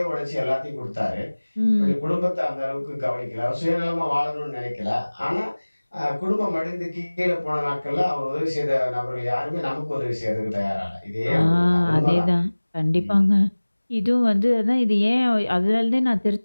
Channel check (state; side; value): inverted; both; correlation -1.00